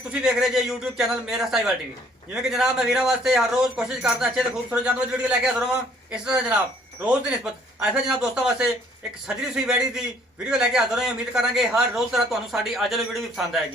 ਵੇਖ ਰਹੇ ਜੇ YouTube ਚੈਨਲ ਮੇਰਾ ਸਾਈਵਾਲ ਟੀਵੀ। ਜਿਵੇਂ ਕਿ ਜਨਾਬ ਮੈਂ ਵੀਰਾਂ ਵਾਸਤੇ ਹਰ ਰੋਜ਼ ਕੋਸ਼ਿਸ਼ ਕਰਦਾ ਅੱਛੇ ਤੇ ਖੂਬਸੂਰਤ ਜਾਨਵਰ ਦੀ ਵੀਡੀਓ ਲੈ ਕੇ ਹਾਜ਼ਰ ਹਾਂ। ਇਸ ਤਰ੍ਹਾਂ ਜਨਾਬ ਰੋਜ਼ ਦੀ ਨਿਸਬਤ ਐਸਾ ਜਨਾਬ ਦੋਸਤਾਂ ਵਾਸਤੇ ਇੱਕ ਸਜਰੀ ਸੂਈ ਵੈੜੀ ਦੀ ਵੀਡੀਓ ਲੈ ਕੇ ਹਾਜ਼ਰ ਹਾਂ। ਉਮੀਦ ਕਰਾਂਗੇ ਹਰ ਰੋਜ਼ ਤਰ੍ਹਾਂ ਤੁਹਾਨੂੰ ਸਾਡੀ ਅੱਜ ਵਾਲੀ ਵੀਡੀਓ ਵੀ ਪਸੰਦ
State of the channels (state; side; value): normal; both; correlation 0.61